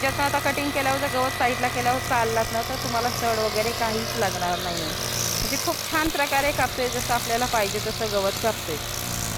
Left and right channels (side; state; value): both; identical; correlation 1.00